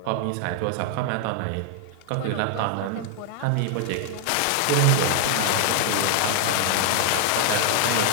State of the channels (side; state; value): both; different; correlation 0.00